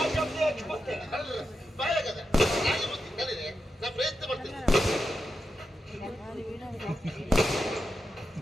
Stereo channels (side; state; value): both; normal; correlation 0.88